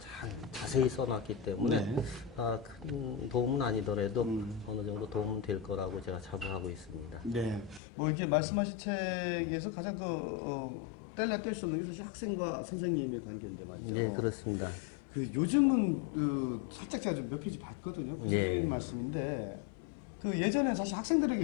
자세히 써놨기 때문에 큰 도움은 아니더라도 어느 정도 도움은 될 거라고 제가 자부하고 있습니다. 네, 이렇게 말씀하신 책에서 가장 뗄래야 뗄 수 없는 게 사실 학생과 선생님의 관계인데 말이죠. 네, 그렇습니다. 요즘은 살짝 제가 좀 몇 페이지 봤거든요. 그래서 예. 드리는 말씀인데 예전에는 사실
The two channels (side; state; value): right; drops out; at 7.8 s